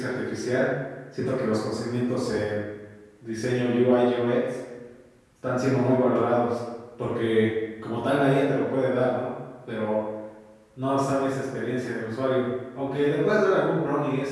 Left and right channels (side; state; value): both; identical; correlation 1.00